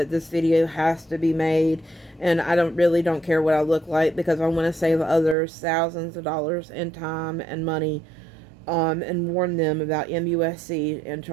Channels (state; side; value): drops out; left; at 5.4 s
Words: this video has to be made. And I don't care what I look like, because I want to save others thousands of dollars in time and money, and warn them about MUSC in